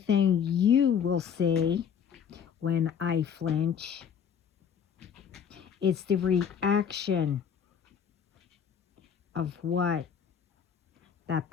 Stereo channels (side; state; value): right; quieter; 7.7 dB